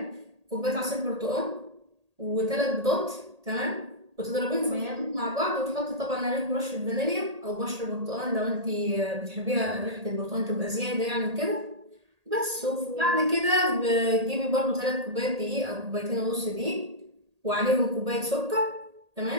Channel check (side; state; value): left; late; 1.8 ms